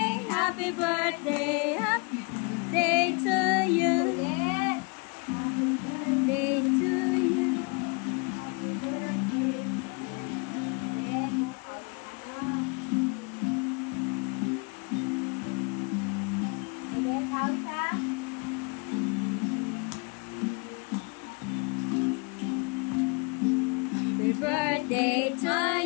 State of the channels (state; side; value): quieter; right; 31.4 dB